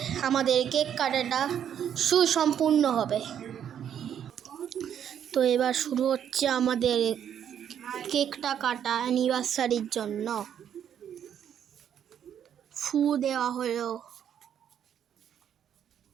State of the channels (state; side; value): quieter; left; 9.2 dB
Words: আমাদের কেক কাটাটা সুসম্পূর্ণ হবে। তো এবার শুরু হচ্ছে আমাদের কেকটা কাটা অ্যানিভার্সারির জন্য। ফু দেওয়া হলো,